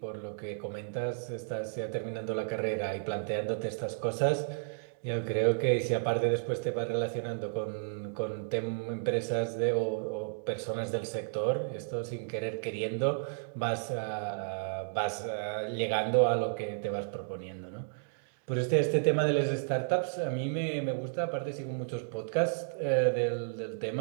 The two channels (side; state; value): left; silent; digital silence